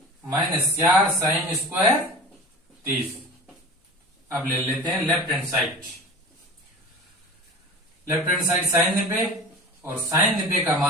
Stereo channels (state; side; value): normal; both; correlation 0.35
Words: माइनस 4 sin स्क्वायर 30। अब ले लेते हैं left hand side. Left hand side sin 90 और sin 90 का